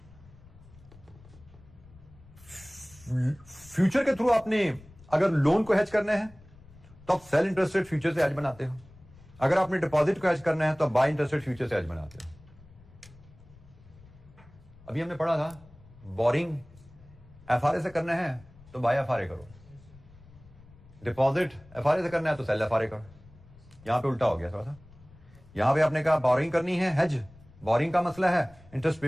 फ्यूचर के थ्रू आपने अगर लोन को हेज करना है तो आप सेल इंटरेस्ट रेट फ्यूचर से हेज बनाते हो, अगर आपने डिपॉजिट को हेज करना है तो आप बाय इंटरेस्ट रेट फ्यूचर से हेज बनाते हो। अभी हमने पढ़ा था बोरिंग FRA से करना है तो बाय FRA करो, डिपॉजिट FRA से करना है तो सेल FRA करो। यहां पे उल्टा हो गया थोड़ा सा, यहां पे आपने कहा बोरिंग करनी है हेज, बोरिंग का मसला है, इंटरेस्ट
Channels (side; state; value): left; noise; rumble, 23 dB below the sound